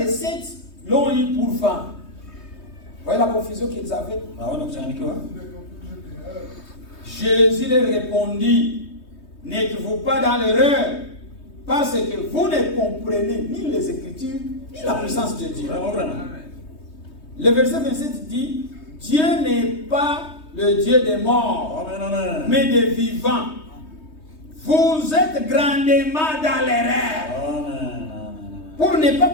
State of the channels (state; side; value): late; right; 3.2 ms